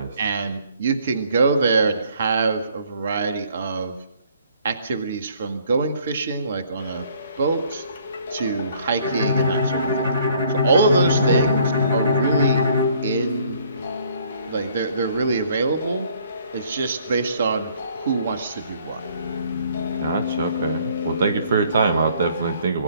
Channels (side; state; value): both; inverted; correlation -0.61